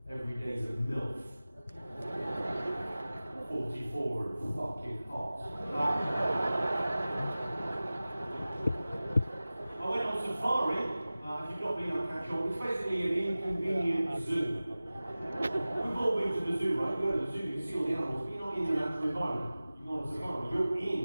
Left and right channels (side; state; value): both; inverted; correlation -0.97